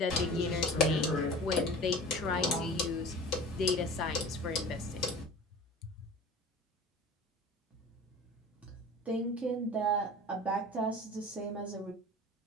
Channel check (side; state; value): both; normal; correlation 0.39